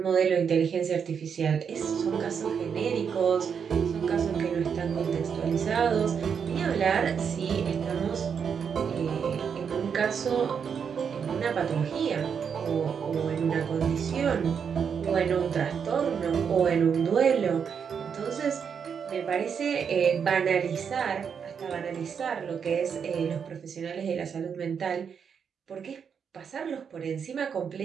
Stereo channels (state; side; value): quieter; left; 6.9 dB